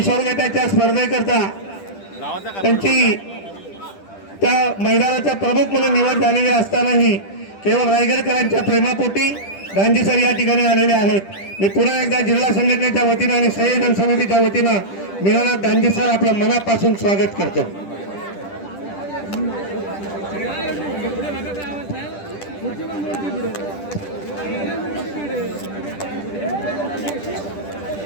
गटाच्या स्पर्धेकरता त्यांची त्या मैदानाचा प्रमुख म्हणून निवड झालेली असतानाही केवळ रायगडकरांच्या प्रेमापोटी दांडी सर या ठिकाणी आलेले आहेत। मी पुन्हा एकदा जिल्हा संघटनेच्या वतीनं आणि संयोजन समितीच्या वतीनं मीनानाथ दांडी सर आपलं मनापासून स्वागत करतो।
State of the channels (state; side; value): late; right; 10 ms